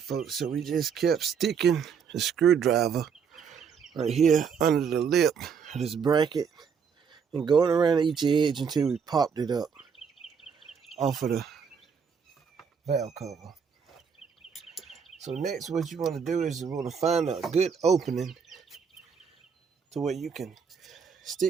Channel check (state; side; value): quieter; left; 6.6 dB